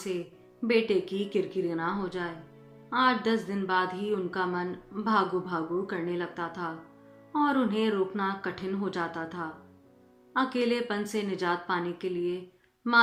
बेटे की किरकिरी ना हो जाए। 8-10 दिन बाद ही उनका मन भागू भागू करने लगता था और उन्हें रोकना कठिन हो जाता था। अकेलेपन से निजात पाने के लिए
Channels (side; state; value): both; identical; correlation 1.00